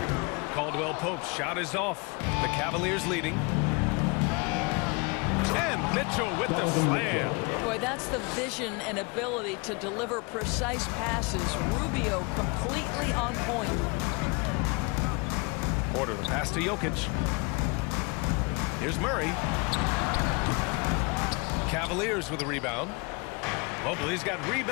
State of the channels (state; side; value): quieter; right; 29.0 dB